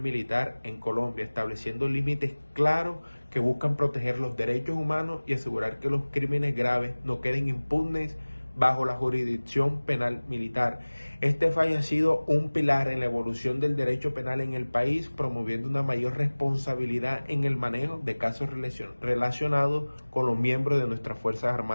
en Colombia, estableciendo límites claros que buscan proteger los derechos humanos y asegurar que los crímenes graves no queden impunes bajo la jurisdicción penal militar. Este fallo ha sido un pilar en la evolución del derecho penal en el país, promoviendo una mayor responsabilidad en el manejo de casos relacionados con los miembros de nuestras Fuerzas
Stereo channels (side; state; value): both; inverted; correlation -1.00